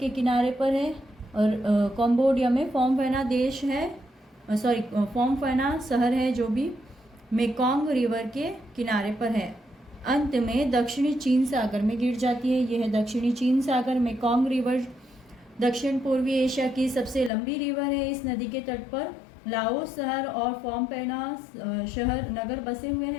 किनारे पर है और कंबोडिया में फोमफेना देश है, सॉरी फोमफेना शहर है जो भी मेकोंग रिवर के किनारे पर है। अंत में दक्षिणी चीन सागर में गिर जाती है। यह है दक्षिणी चीन सागर। मेकोंग रिवर दक्षिण पूर्वी एशिया की सबसे लंबी रिवर है। इस नदी के तट पर लाओस शहर और फोमफेना शहर नगर बसे हुए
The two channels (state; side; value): drops out; right; at 17.3 s